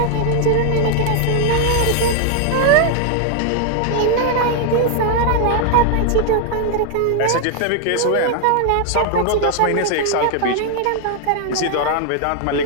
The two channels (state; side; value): different; both; correlation 0.00